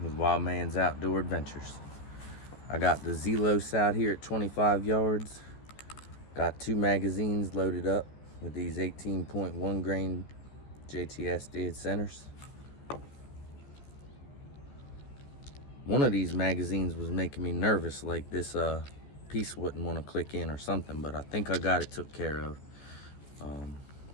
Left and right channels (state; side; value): late; right; 14 ms